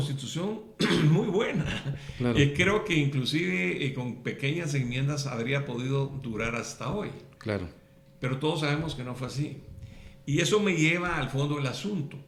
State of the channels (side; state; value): both; identical; correlation 1.00